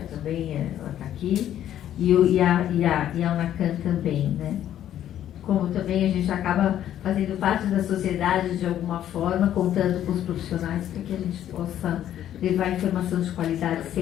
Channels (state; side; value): quieter; right; 11.2 dB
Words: também, ela está aqui, e a UNACAM também, né? Como também a gente acaba fazendo parte da sociedade de alguma forma, contando com os profissionais para que a gente possa levar informação de qualidade